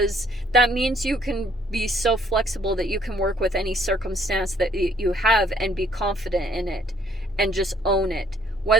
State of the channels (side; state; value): both; normal; correlation 0.63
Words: that means you can be so flexible that you can work with any circumstance that you have and be confident in it and just own it.